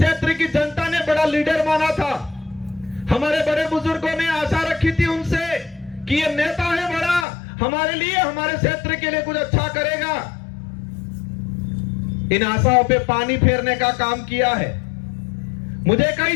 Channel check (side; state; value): right; drops out; at 7.2 s